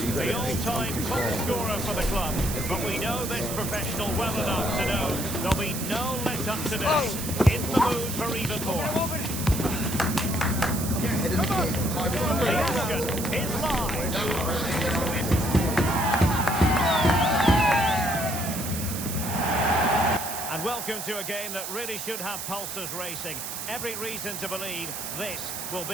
the all-time top scorer for the club. But we know this professional well enough to know there'll be no let-up today. In the mood for even more. The action is live. And welcome to a game that really should have pulses racing. Every reason to believe this will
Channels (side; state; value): right; noise; hiss, 6 dB below the sound